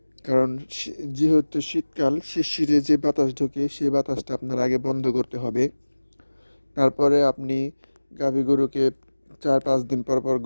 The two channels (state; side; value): inverted; both; correlation -1.00